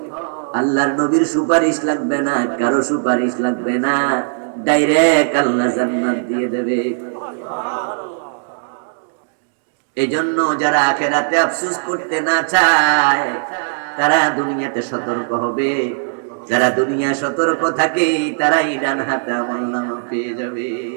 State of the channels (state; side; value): silent; left; digital silence